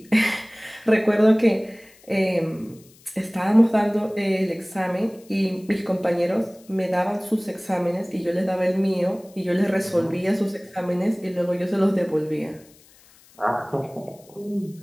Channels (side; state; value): left; noise; hiss, 27 dB below the sound